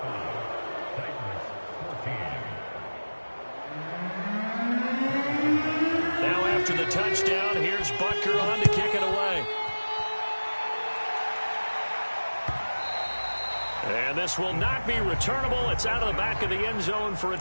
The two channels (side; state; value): both; inverted; correlation -1.00